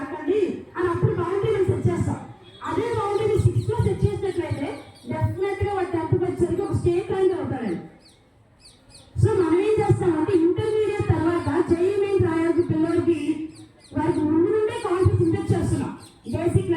అని అప్పుడు బౌండరీ సెట్ చేస్తాం. అదే బౌండరీ 6th లో సెట్ చేసినట్లయితే డెఫినెట్ గా వాడు 10th వచ్చేసరికి ఒక స్టేట్ ర్యాంక్ అవుతాడండి. సో మనం ఏం చేస్తామంటే ఇంటర్మీడియట్ తర్వాత జేఈ మెయిన్ రాయాల్సిన పిల్లలకి వారికి ముందు నుండే కాన్ఫిడెన్స్ ఇంజెక్ట్ చేస్తున్నాం బేసిక్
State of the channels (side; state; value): both; identical; correlation 1.00